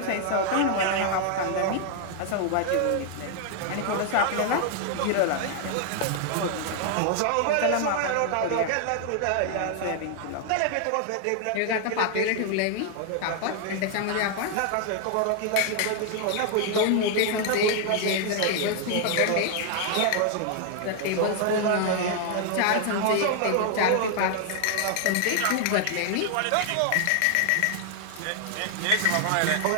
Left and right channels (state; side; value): different; both; correlation 0.00